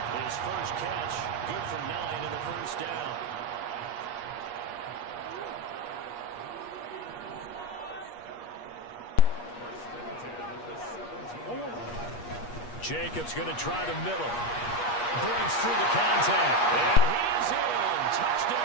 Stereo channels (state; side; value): late; right; 8.4 ms